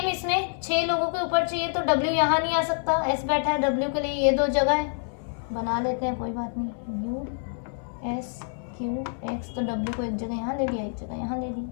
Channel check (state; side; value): silent; right; 60 dB below the other